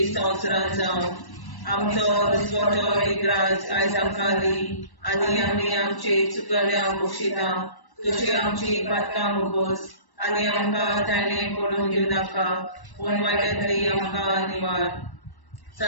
संवसारांत जावं. आमचो दिसवटो विग्रास आयज आमकां दी आनी आमी आमचे चुकल्यांक बक्षिता. तशी आमची पातकां मुगोस आनी आमकां ताणें पडूंक दिवं नाका, पूण वायटांतली आमकां निवार.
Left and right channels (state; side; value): late; right; 1.1 ms